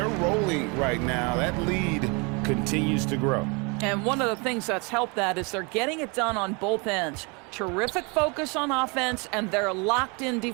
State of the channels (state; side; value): quieter; left; 30.6 dB